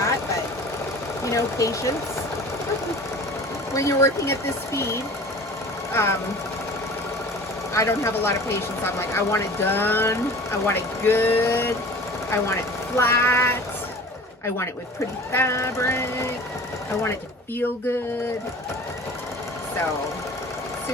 but you know, patience. When you're working at this speed, I don't have a lot of patience. I'm like, I want it done. I want it good. I want it flat. I want it with pretty fabric. I want it to feel good. So,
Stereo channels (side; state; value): both; normal; correlation 0.41